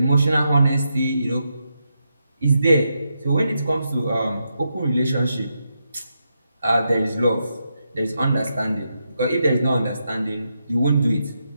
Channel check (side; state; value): both; inverted; correlation -0.84